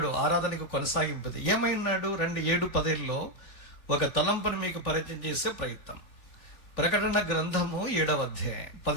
ఆరాధనకు కొనసాగింపుది. ఏమై ఉన్నాడు? 7-10లో ఒక తలంపును మీకు పరిచయం చేసే ప్రయత్నం. ప్రకటన గ్రంథము 7వ అధ్యాయం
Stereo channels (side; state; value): right; late; 3.3 ms